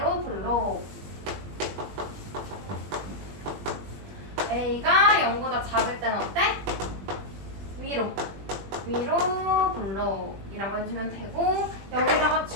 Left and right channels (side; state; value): left; late; 20 ms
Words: 볼록. A가 0보다 작을 때는 어때? 위로. 위로 볼록이라고 해주면 되고 여기다가